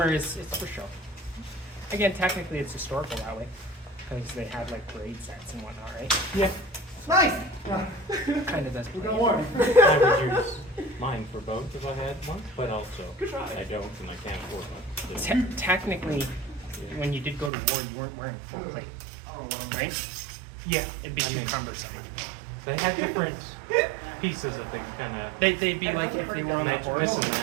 is it's for show. Again, technically it's historical that way, because they had like parade sets and whatnot, right? Yeah. Nice. Kind of does. We got play. one. I would use mine for both if I had one, but also Good try. I don't and I can't afford one. Technically, when you did go to war, you weren't wearing full plate, right? Yeah. It'd be I too mean, cumbersome. They had different pieces that they kind of They'd be like if they were on a match horse. this and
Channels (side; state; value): left; drops out; at 17.5 s